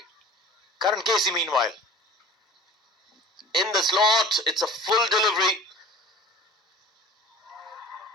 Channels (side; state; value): both; normal; correlation 0.42